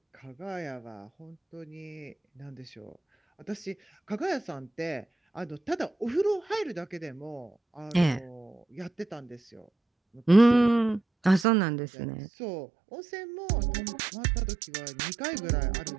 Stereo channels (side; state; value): left; drops out; at 11.5 s